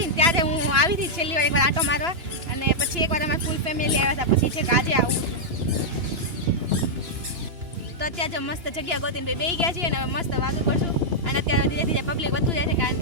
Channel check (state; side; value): late; left; 2.9 ms